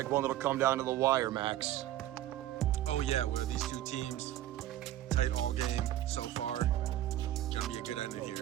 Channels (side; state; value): left; quieter; 13.3 dB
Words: one that'll come down to the wire, Max. Oh yeah, where these 2 teams, tight all game so far. Gonna be a good ending